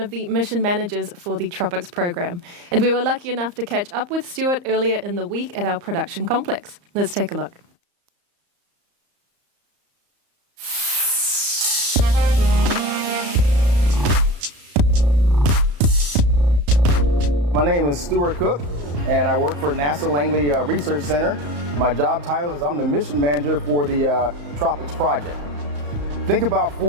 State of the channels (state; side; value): late; left; 34 ms